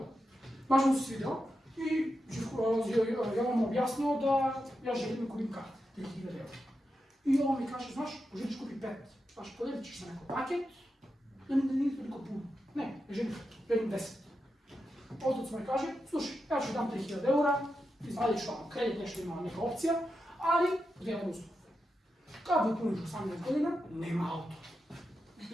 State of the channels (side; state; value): both; normal; correlation 0.88